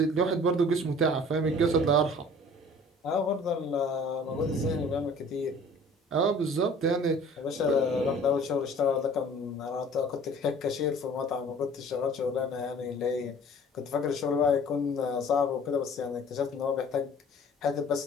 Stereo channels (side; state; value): both; normal; correlation 0.49